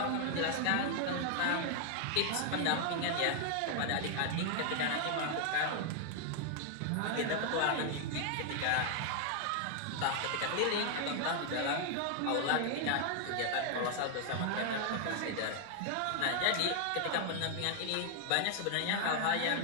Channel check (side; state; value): both; different; correlation 0.00